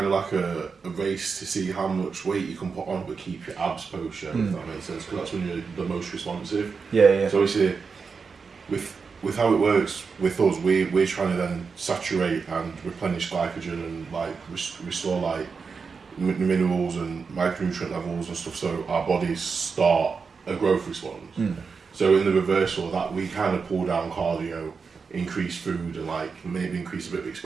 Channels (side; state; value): left; quieter; 5.2 dB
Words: of like a race to see how much weight you can put on but keep your abs post show, if that makes sense, because that's when you're the most responsive. Yeah. So obviously with how it works with us, we're trying to then saturate and replenish glycogen and like restore like minerals and micronutrient levels and stuff, so our bodies start a growth response. So in the reversal of that, we kind of pull down cardio, increase food, and like maybe increase a bit of